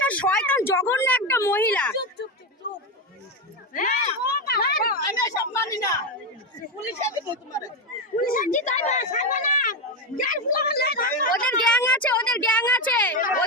শয়তান জঘন্য একটা মহিলা। ওদের গ্যাং আছে, ওদের গ্যাং আছে,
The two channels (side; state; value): both; normal; correlation 0.11